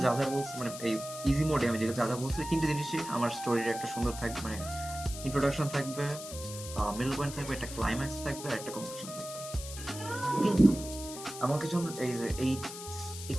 যা যা বলছি, মানে এই ইজি মোডে আমি যা যা বলছি, তিনটে জিনিসই আমার স্টোরির একটা সুন্দর থাকবে, মানে ইন্ট্রোডাকশন থাকবে, মিডল পয়েন্ট থাকবে, একটা ক্লাইম্যাক্স থাকবে, আর একটা কনক্লুশন থাকবে। কিন্তু আমাকে যখন এই যে এই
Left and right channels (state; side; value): noise; left; hiss, 11 dB below the sound